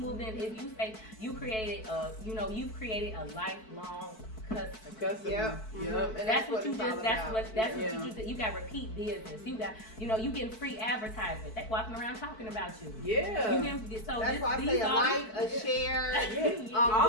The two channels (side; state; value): right; late; 4.6 ms